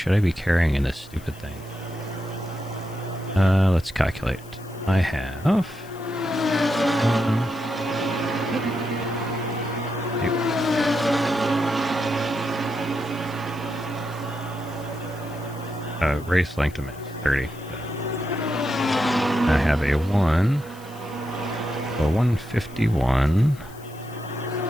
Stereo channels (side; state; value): left; noise; hiss, 22 dB below the sound